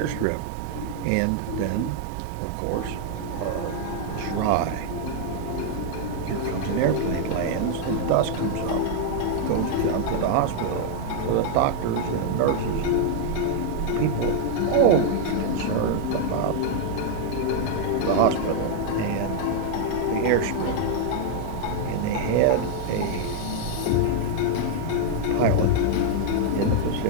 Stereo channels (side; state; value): both; different; correlation -0.01